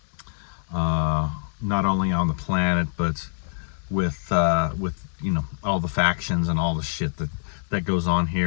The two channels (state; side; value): silent; right; 62 dB below the other